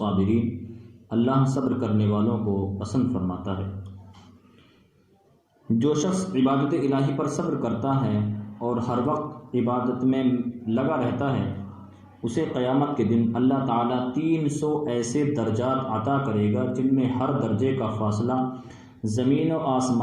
اللہ صبر کرنے والوں کو پسند فرماتا ہے۔ جو شخص عبادت الہی پر صبر کرتا ہے اور ہر وقت عبادت میں لگا رہتا ہے، اسے قیامت کے دن اللہ تعالیٰ 300 ایسے درجات عطا کرے گا جن میں ہر درجے کا فاصلہ زمین و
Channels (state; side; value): identical; both; correlation 1.00